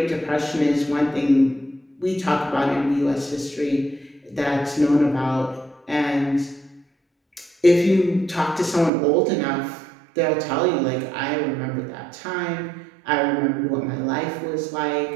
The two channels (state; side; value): drops out; left; at 8.9 s